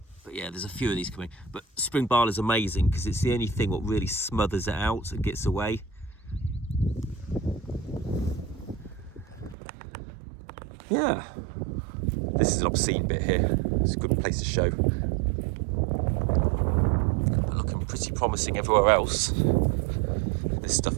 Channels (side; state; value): left; drops out; at 9.6 s